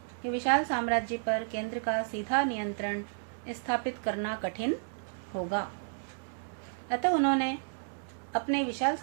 कि विशाल साम्राज्य पर केंद्र का सीधा नियंत्रण स्थापित करना कठिन होगा, अतः उन्होंने अपने विशाल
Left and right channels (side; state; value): left; silent; digital silence